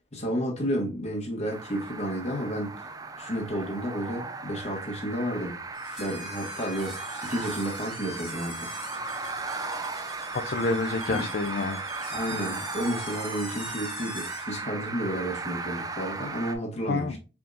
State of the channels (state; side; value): normal; both; correlation 0.39